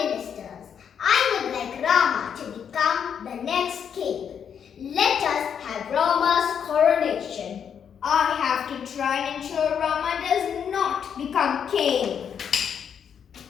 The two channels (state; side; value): quieter; right; 7.8 dB